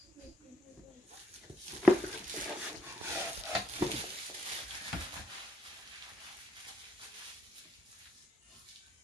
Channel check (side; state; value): both; normal; correlation 0.74